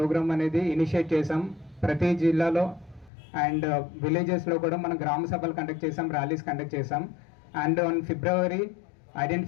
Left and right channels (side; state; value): right; drops out; at 3.1 s